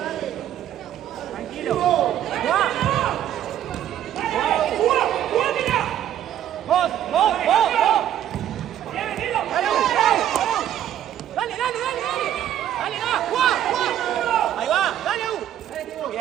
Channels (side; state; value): left; quieter; 11.2 dB